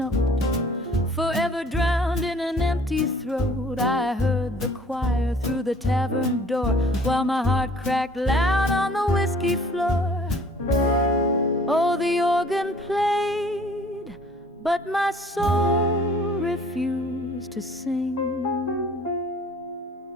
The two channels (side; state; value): both; normal; correlation 0.53